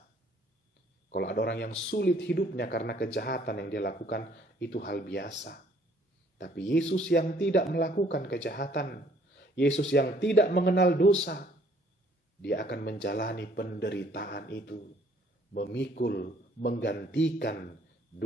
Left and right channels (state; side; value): normal; both; correlation 0.62